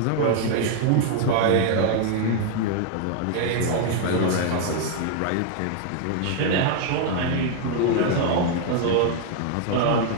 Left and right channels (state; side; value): different; both; correlation 0.00